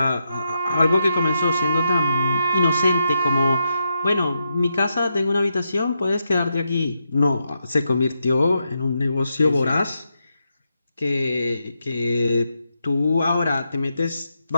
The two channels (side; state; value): both; inverted; correlation -0.83